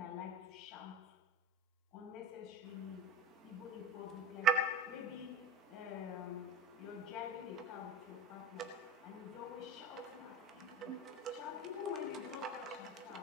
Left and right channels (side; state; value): both; normal; correlation 0.28